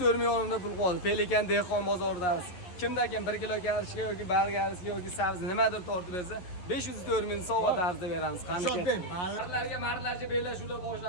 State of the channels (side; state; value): right; late; 11 ms